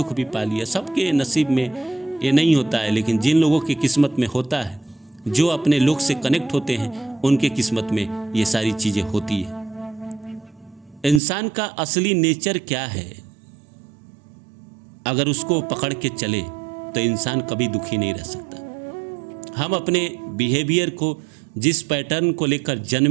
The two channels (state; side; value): drops out; left; at 11.2 s